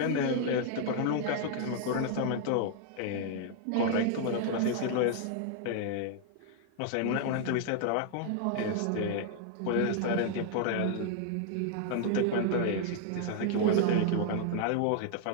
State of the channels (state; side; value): different; both; correlation 0.00